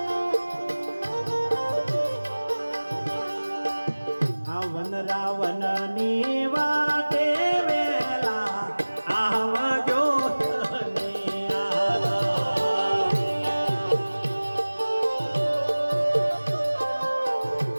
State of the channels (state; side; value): inverted; both; correlation -1.00